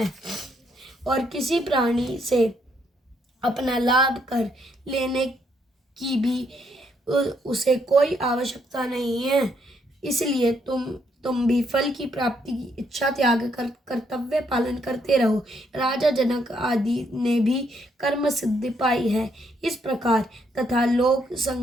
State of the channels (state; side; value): normal; both; correlation 0.73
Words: और किसी प्राणी से अपना लाभ कर लेने की भी उसे कोई आवश्यकता नहीं है। इसलिए तुम तुम भी फल की प्राप्ति की इच्छा त्याग कर कर्तव्य पालन करते रहो। राजा जनक आदि ने भी कर्म सिद्धि पाई है। इस प्रकार तथा लोक